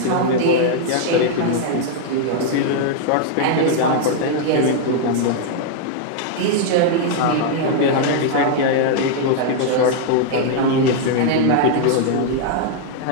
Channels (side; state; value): both; different; correlation -0.01